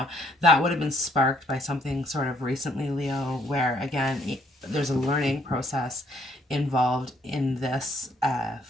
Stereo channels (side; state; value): both; normal; correlation 0.66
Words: that would have been sparked by something sort of recently, Leo, where again, there's a learning process involved in this